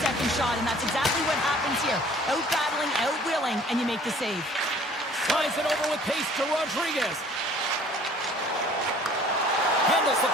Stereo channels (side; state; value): both; normal; correlation 0.53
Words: second shot, and that's exactly what happens here. Out-battling, out-willing, and you make the save. Slides it over with pace to Rodriguez. Handles the